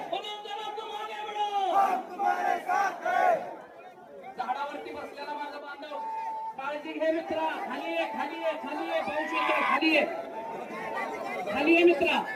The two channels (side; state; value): both; identical; correlation 1.00